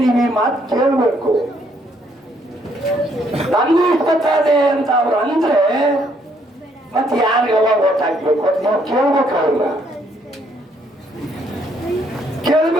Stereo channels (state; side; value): normal; both; correlation 0.69